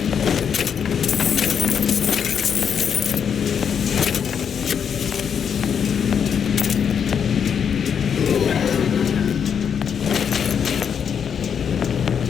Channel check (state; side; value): quieter; right; 7.5 dB